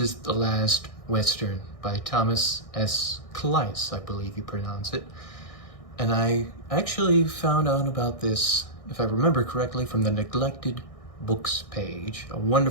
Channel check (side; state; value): right; late; 1.6 ms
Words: The Last Western by Thomas S. Salis, I believe you pronounce it. And I actually found out about this, if I remember correctly, from the Neglected Books page, a